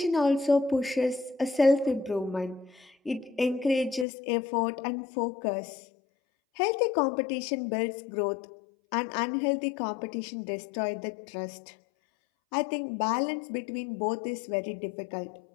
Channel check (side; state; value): right; drops out; at 4.0 s